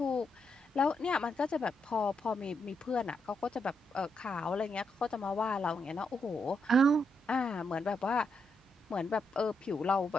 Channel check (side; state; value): both; normal; correlation 0.80